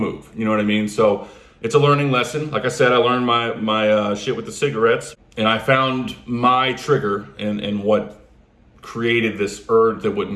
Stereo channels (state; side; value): identical; both; correlation 1.00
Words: You know what I mean? So it's a learning lesson. Like I said, I learned my shit with the cigarettes, and I found my trigger and what created this urge that